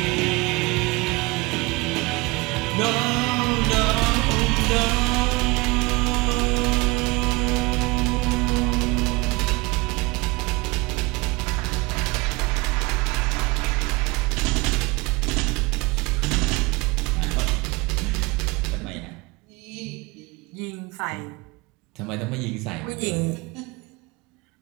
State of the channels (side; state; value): left; quieter; 24.2 dB